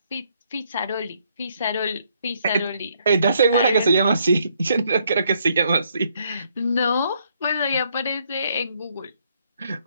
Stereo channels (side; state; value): both; inverted; correlation -0.70